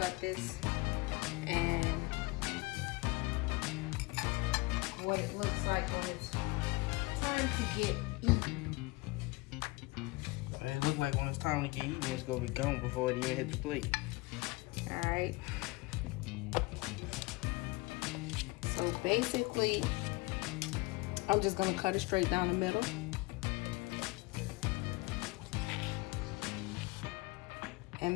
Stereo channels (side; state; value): right; quieter; 23.7 dB